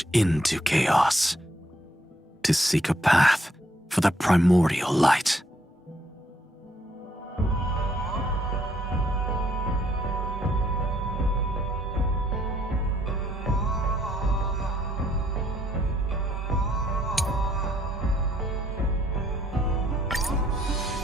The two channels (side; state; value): both; normal; correlation 0.69